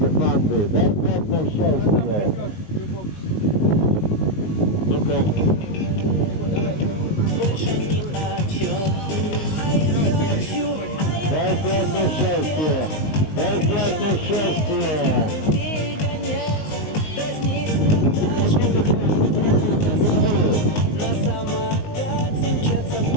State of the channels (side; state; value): right; late; 19 ms